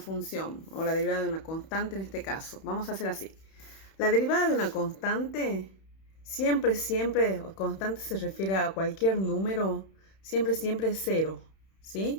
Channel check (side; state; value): right; late; 31 ms